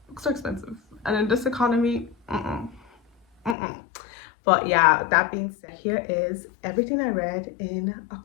books are expensive, and in this economy, But yeah, that being said, here is everything I read in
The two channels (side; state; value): right; drops out; at 3.6 s